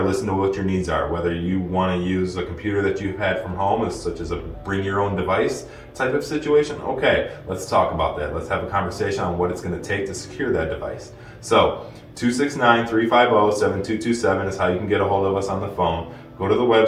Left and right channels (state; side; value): identical; both; correlation 1.00